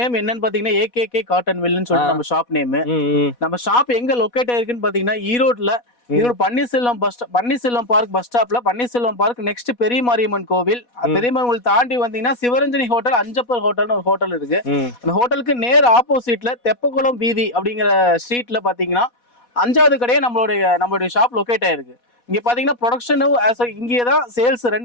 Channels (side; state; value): right; late; 4.1 ms